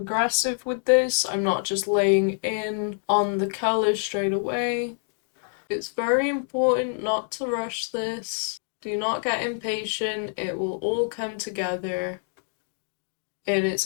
with this? I'm not just laying in on the colour straight away. It's very important not to rush this. Do not get impatient. It will all come together in its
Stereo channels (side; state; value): right; silent; digital silence